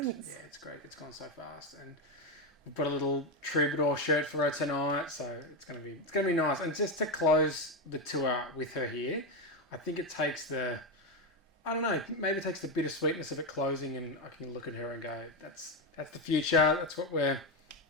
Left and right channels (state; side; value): normal; both; correlation 0.10